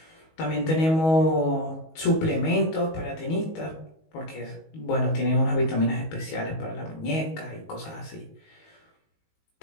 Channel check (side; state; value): right; late; 19 ms